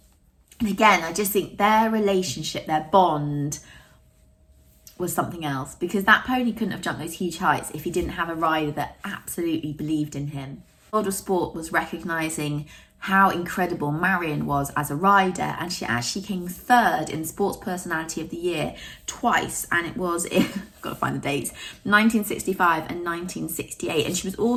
And again, I just think their relationship, their bond, was something else, because that pony couldn't have jumped those huge heights if he didn't have a rider that absolutely believed in him. The World of Sport was recognising how incredible Marion was as a rider, and she actually came third in Sports Personality of the Year twice, and it was in, got to find the dates, 1965 and 1968, and she was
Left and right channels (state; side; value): identical; both; correlation 1.00